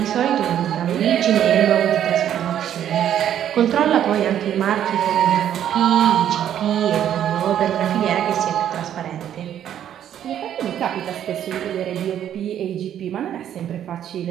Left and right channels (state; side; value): quieter; left; 10.3 dB